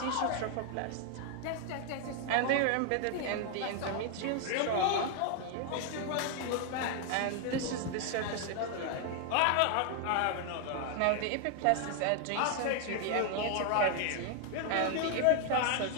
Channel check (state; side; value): different; both; correlation 0.00